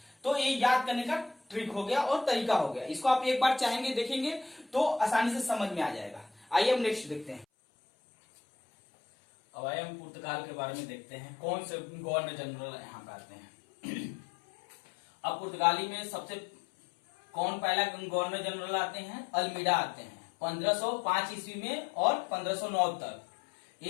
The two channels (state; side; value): drops out; right; at 7.5 s